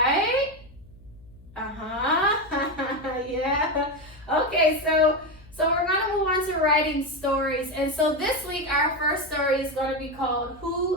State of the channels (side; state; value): left; noise; hum, 23 dB below the sound